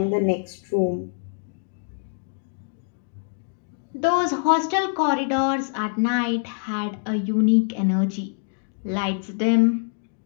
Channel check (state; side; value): silent; right; digital silence